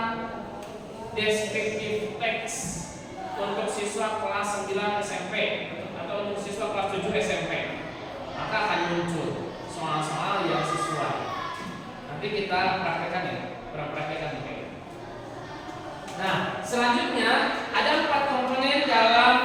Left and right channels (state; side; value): identical; both; correlation 1.00